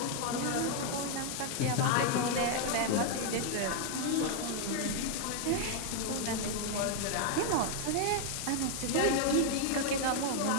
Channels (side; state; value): both; different; correlation 0.00